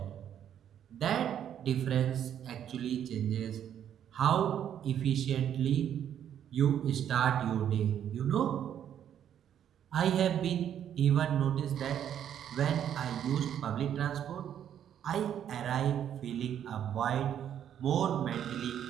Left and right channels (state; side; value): quieter; left; 9.7 dB